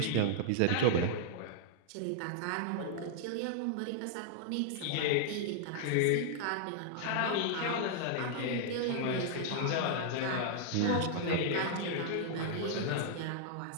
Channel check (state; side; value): different; both; correlation -0.01